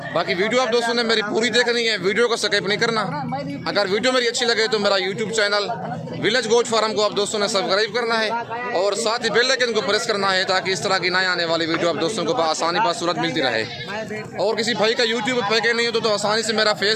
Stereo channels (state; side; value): identical; both; correlation 1.00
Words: बाकी वीडियो आप दोस्तों ने मेरी पूरी देखनी है, वीडियो को स्किप नहीं करना। अगर वीडियो मेरी अच्छी लगे तो मेरा YouTube channel village goat farm को आप दोस्तों ने सब्सक्राइब करना है और साथ ही बेल आइकन को प्रेस करना है ताकि इस तरह की नए आने वाली वीडियो आप दोस्तों को आसानी बासूरत मिलती रहे। और किसी भाई का यूट्यूब पैकेज नहीं हो तो आसानी से मेरा